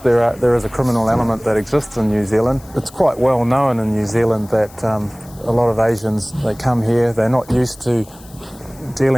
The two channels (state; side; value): noise; left; hiss, 24 dB below the sound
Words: is a criminal element that exists in New Zealand. It's quite well known in New Zealand that a lot of Asians, they come here, they're not used to